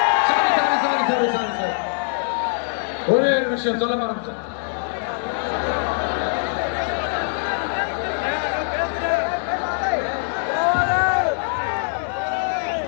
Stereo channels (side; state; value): right; silent; digital silence